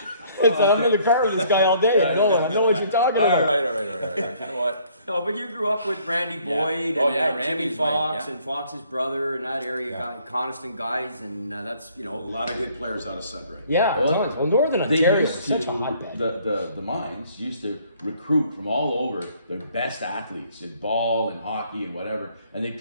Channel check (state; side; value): inverted; both; correlation -0.61